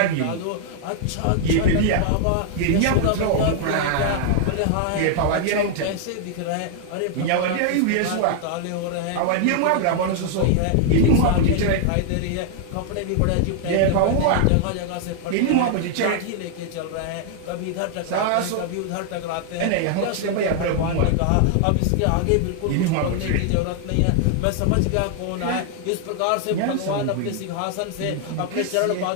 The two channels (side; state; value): both; different; correlation 0.00